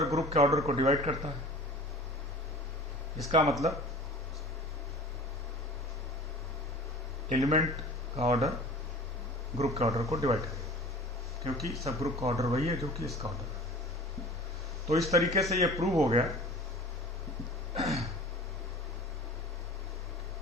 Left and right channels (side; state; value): both; normal; correlation 0.42